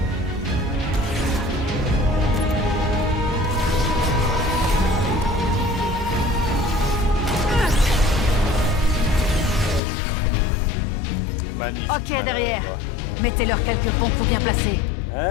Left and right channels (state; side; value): drops out; right; at 9.8 s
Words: Magnifique. Ok, madame. derrière. Mettez-leur quelques bons coups bien placés.